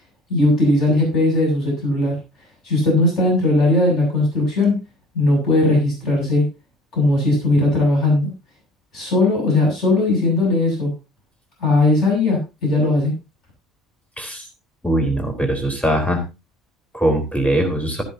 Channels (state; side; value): normal; both; correlation 0.51